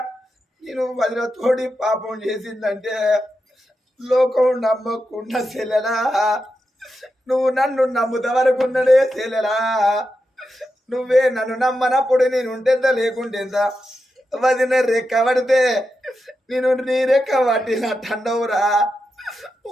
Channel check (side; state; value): both; normal; correlation 0.88